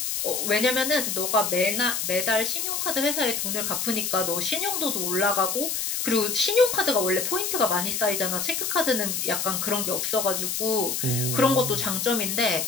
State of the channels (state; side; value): noise; left; hiss, 1 dB below the sound